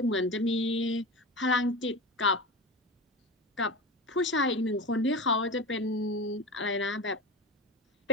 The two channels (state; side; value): normal; both; correlation 0.27